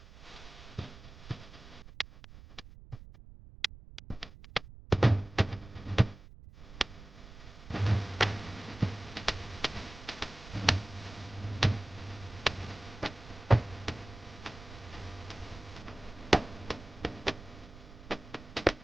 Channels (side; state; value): right; noise; rumble, 16 dB below the sound